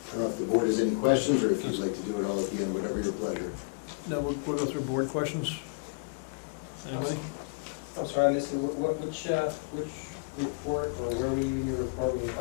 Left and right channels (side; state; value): right; quieter; 35.8 dB